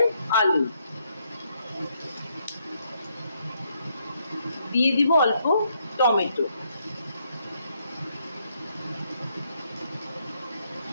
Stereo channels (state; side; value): inverted; both; correlation -0.74